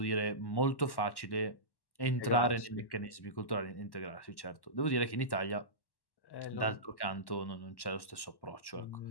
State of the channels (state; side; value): late; right; 1.1 ms